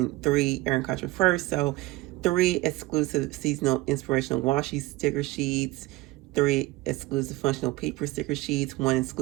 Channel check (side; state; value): left; quieter; 19.3 dB